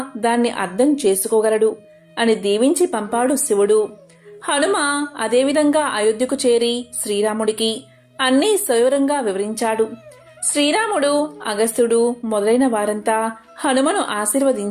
దాన్ని అర్థం చేసుకోగలడు అని దీవించి పంపాడు శివుడు. హనుమ అదేవిధంగా అయోధ్యకు చేరి శ్రీరాముడికి అన్నీ సవివరంగా వివరించాడు. శ్రీరాముడు, అగస్త్యుడు మొదలైన వారంతా హనుమను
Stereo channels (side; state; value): both; identical; correlation 1.00